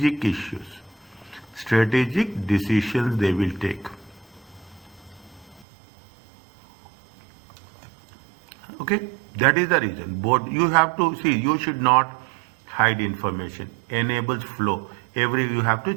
issues. Strategic decisions they will take. Okay, that is the reason. Board, you have to see, you should not hide information. Enables flow. You have to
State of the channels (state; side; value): drops out; left; at 5.7 s